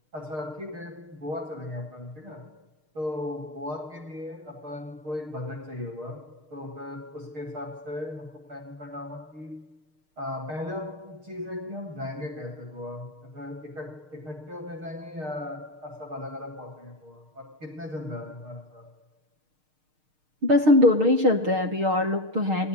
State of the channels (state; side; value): late; left; 6.5 ms